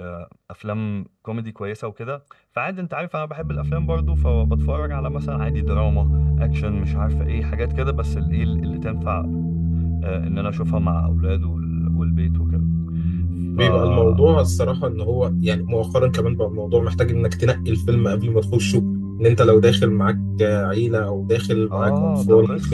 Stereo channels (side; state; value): both; identical; correlation 1.00